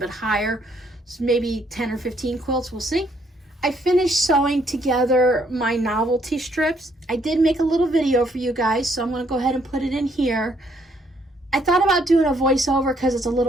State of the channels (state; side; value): normal; both; correlation 0.69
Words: bit higher. So maybe 10 or 15 quilts, we'll see. I finished sewing together my novelty strips. I did make a little video for you guys, so I'm gonna go ahead and put it in here. I thought about doing a voiceover because it's a